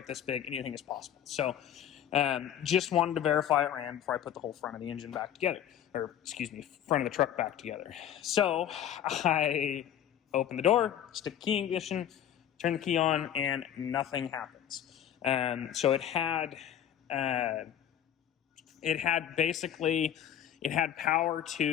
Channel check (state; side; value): quieter; right; 10.2 dB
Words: this big, anything is possible. So just wanted to verify it ran before I put the whole front of the engine back together, or excuse me, front of the truck back together. So I open the door, stick the key in ignition, turn the key on, and nothing happens. So it had basically, it had power